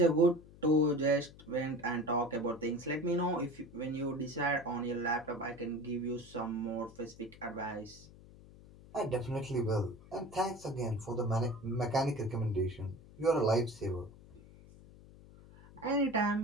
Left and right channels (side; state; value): left; noise; hum, 20 dB below the sound